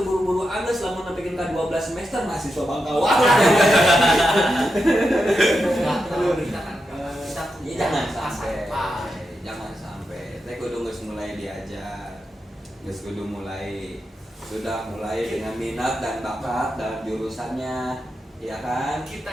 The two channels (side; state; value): both; normal; correlation 0.87